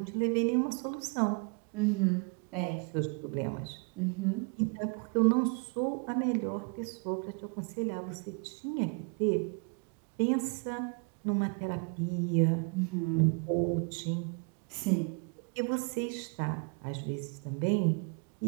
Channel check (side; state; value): left; quieter; 36.5 dB